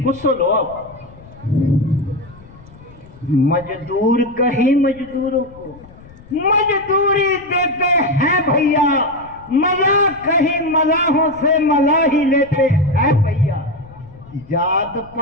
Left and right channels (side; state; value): left; noise; rumble, 22 dB below the sound